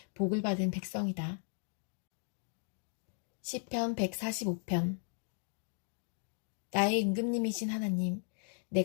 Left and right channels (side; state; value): right; silent; 54 dB below the other